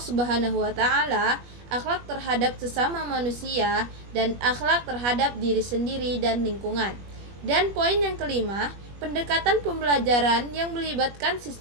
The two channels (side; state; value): left; late; 21 ms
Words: wa taala, akhlak terhadap sesama manusia, dan akhlak terhadap diri sendiri dan lingkungan. Dan poin yang kelima, pendekatan pembelajaran yang melibatkan